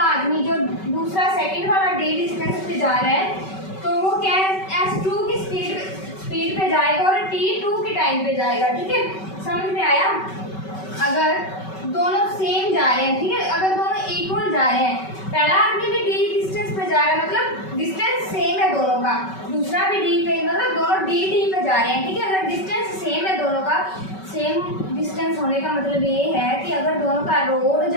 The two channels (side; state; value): right; late; 5.3 ms